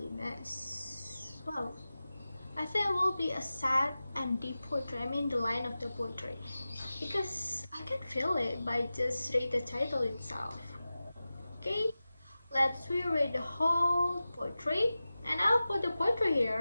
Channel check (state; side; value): inverted; both; correlation -0.95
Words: Well, I think it will be a sad and deep poetry. I mean the line of the poetry, because I can feel it by just read the title itself. Okay, let's reread the whole poetry, and I'll put the poetry